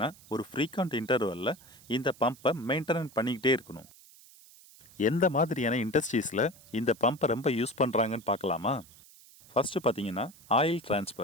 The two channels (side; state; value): right; noise; hiss, 23 dB below the sound